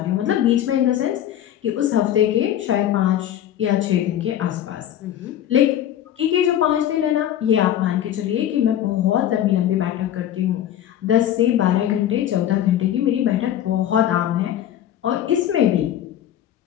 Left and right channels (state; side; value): quieter; right; 11.2 dB